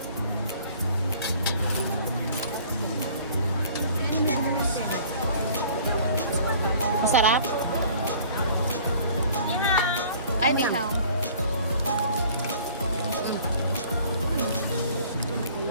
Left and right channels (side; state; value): both; inverted; correlation -0.51